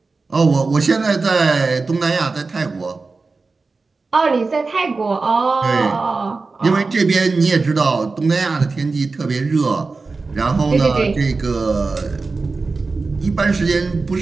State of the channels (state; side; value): quieter; left; 4.0 dB